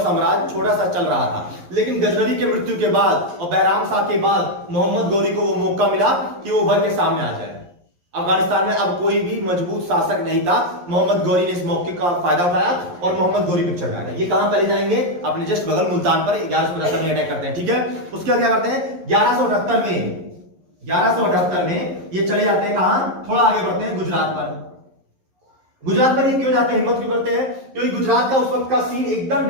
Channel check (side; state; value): left; late; 11 ms